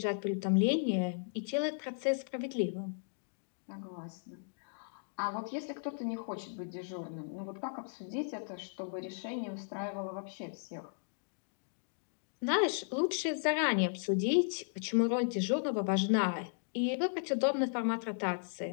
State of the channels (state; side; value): silent; right; digital silence